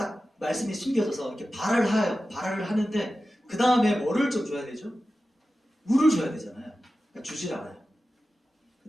말씀이 숨겨져서 이렇게 발을 하는데 그 다음에 뭐를 좀 줘야 되죠? 물을 줘야 되잖아요. 그러니까 주질 않아요. 그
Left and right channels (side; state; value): both; normal; correlation 0.94